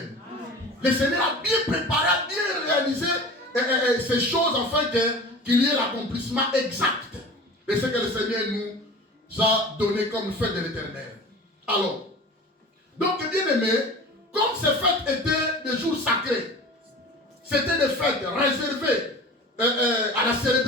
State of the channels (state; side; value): normal; both; correlation 0.38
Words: Le Seigneur a bien préparé, a bien réalisé ces choses afin qu'il y ait l'accomplissement exact de ce que le Seigneur nous a donné comme fête de l'Éternel. Alors, donc bien aimé, comme ces fêtes étaient des jours sacrés, c'était des fêtes réservées à la